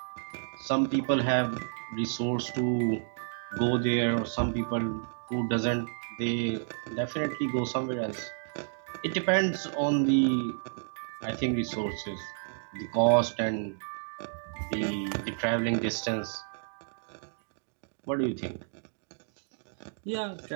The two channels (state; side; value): silent; left; digital silence